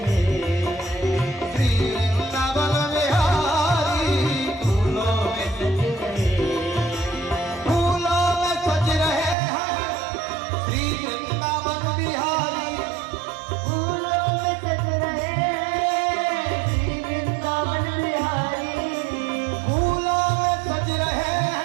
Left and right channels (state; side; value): drops out; left; at 9.3 s